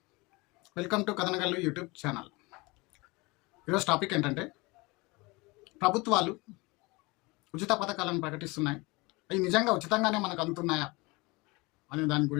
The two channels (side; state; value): right; quieter; 24.9 dB